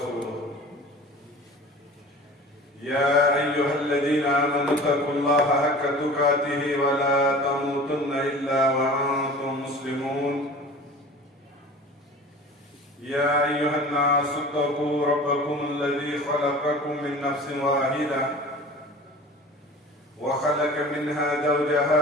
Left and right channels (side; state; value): both; normal; correlation 0.41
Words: يا أيها الذين آمنوا اتقوا الله حق تقاته ولا تموتن إلا وأنتم مسلمون يا أيها الناس اتقوا ربكم الذي خلقكم من نفس واحدة وخلق منها